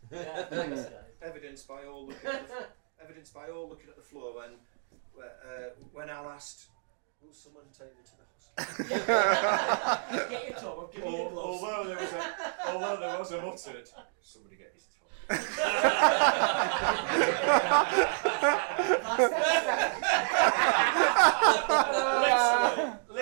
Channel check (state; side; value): silent; left; digital silence